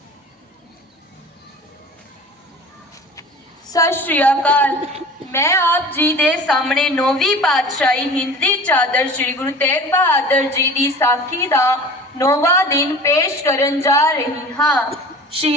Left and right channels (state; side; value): normal; both; correlation 0.40